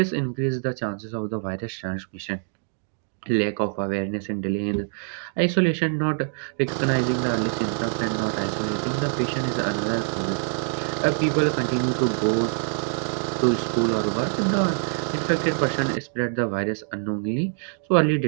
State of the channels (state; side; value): silent; left; 61 dB below the other